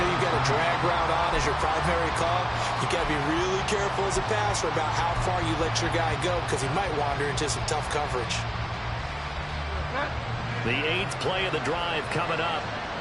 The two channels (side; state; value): both; identical; correlation 1.00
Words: you've got a drag route on as your primary call, you got to be really careful as a passer about how far you let your guy go because he might wander into some tough coverage. The 8th play of the drive coming up.